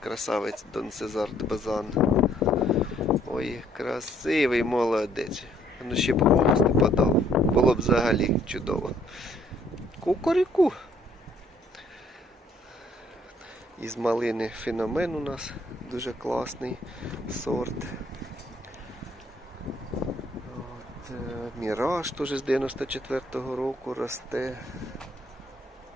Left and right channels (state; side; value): normal; both; correlation 0.65